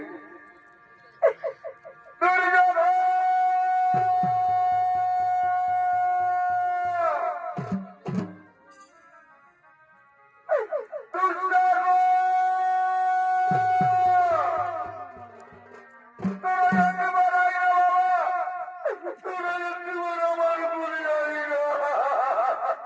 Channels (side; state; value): both; identical; correlation 1.00